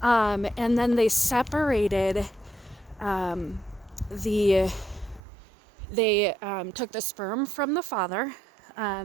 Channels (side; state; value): left; drops out; at 5.2 s